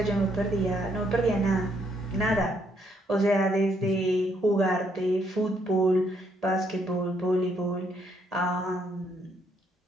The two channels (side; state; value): both; normal; correlation 0.72